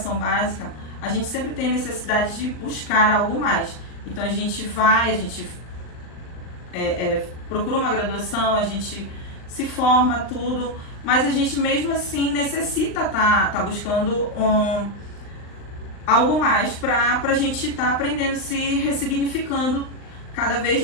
básica, a gente sempre tem necessidade de buscar algo mais. Então, a gente procura uma graduação, a gente se forma, tudo, mas a gente mesmo assim necessita tá buscando algo mais para a gente estar aprendendo, se ressignificando cada vez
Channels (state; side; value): late; right; 39 ms